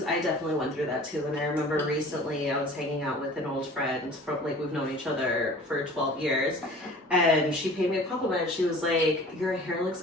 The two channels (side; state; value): both; normal; correlation 0.45